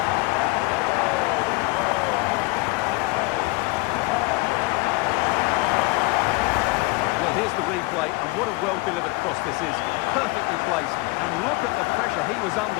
Here's the replay, and what a well-delivered cross this is. Perfectly placed, and look at the pressure he was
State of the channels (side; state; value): right; quieter; 23.9 dB